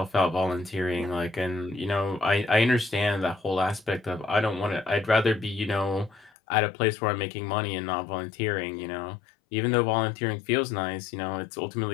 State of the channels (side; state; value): right; drops out; at 6.3 s